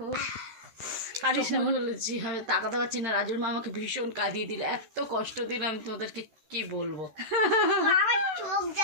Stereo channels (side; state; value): left; late; 13 ms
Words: কাঁদিস না বলেছি, আমি তাকাতে পারছি না। রাজুর মা আমাকে ভীষণ কাঁদিয়ে দিল, এত কষ্ট দিলাম তোমাদেরকে কি বলবো। আমার চোখ